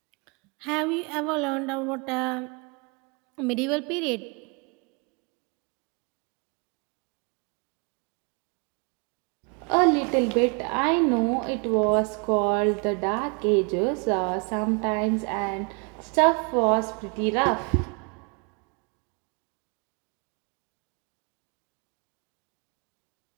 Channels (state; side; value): quieter; left; 33.9 dB